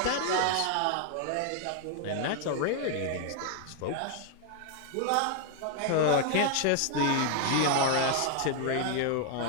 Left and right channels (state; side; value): different; both; correlation 0.00